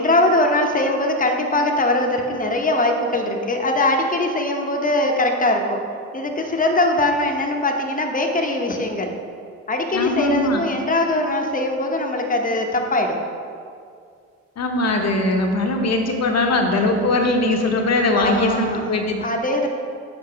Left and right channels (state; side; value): normal; both; correlation 0.11